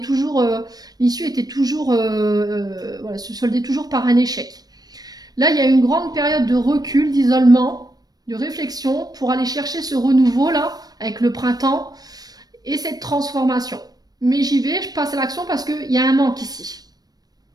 l'issue était toujours... voilà, se soldait toujours par un échec. Là, il y a une grande période de recul, d'isolement, de réflexion pour aller chercher ce renouveau là avec le printemps et cette transformation. Mais j'y vais, je passe à l'action parce qu'il y a un manque ici.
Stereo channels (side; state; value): left; late; 0.19 ms